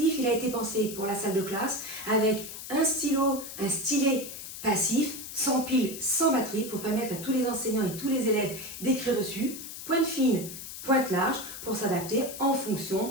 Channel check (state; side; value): noise; left; hiss, 10 dB below the sound